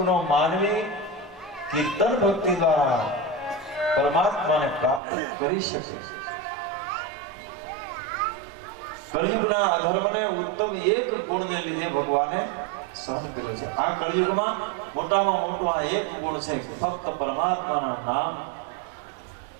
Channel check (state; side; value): drops out; left; at 5.0 s